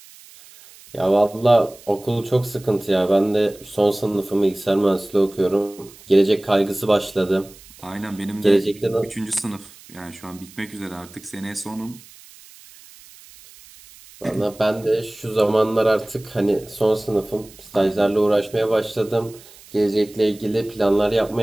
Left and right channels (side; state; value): right; noise; hiss, 22 dB below the sound